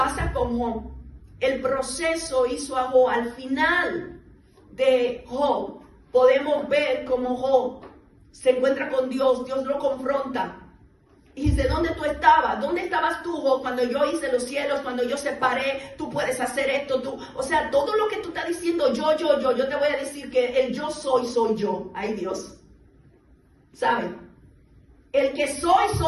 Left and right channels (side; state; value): both; identical; correlation 1.00